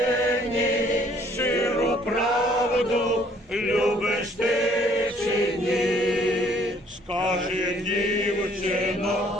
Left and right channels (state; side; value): normal; both; correlation 0.61